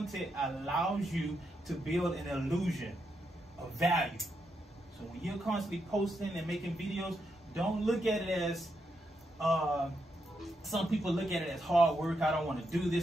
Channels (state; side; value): normal; both; correlation 0.82